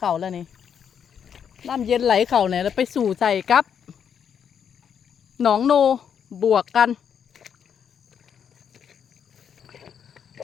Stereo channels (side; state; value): right; quieter; 7.9 dB